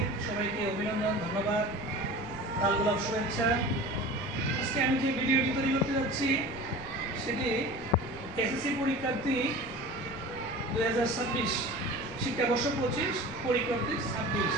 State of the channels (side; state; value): right; noise; rumble, 21 dB below the sound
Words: সবাইকে অভিনন্দন, ধন্যবাদ, লাল গোলাপ শুভেচ্ছা। আজকে আমি যে ভিডিওটি তৈরি করতে যাচ্ছি সেটি এসএসসি পরীক্ষার্থী 2026 শিক্ষাবর্ষ 25 পরীক্ষার্থী 26।